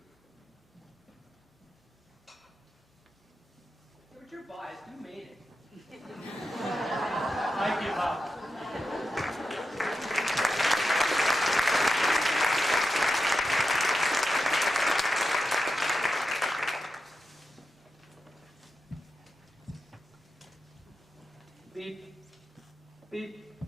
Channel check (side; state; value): both; normal; correlation 0.89